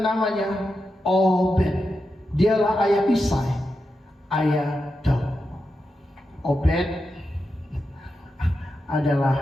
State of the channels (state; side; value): normal; both; correlation 0.88